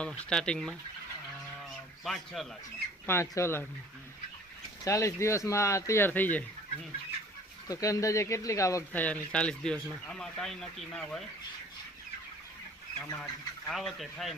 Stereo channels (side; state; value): both; normal; correlation 0.51